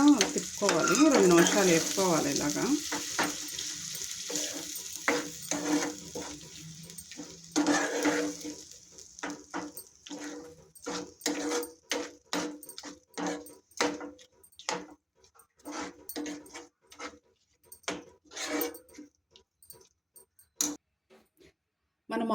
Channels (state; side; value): identical; both; correlation 1.00